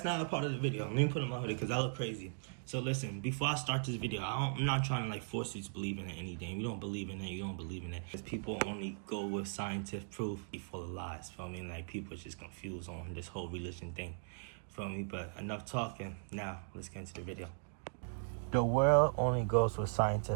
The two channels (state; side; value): silent; left; digital silence